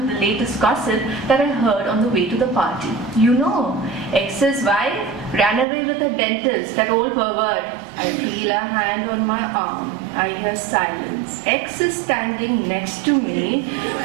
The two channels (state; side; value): drops out; left; at 5.7 s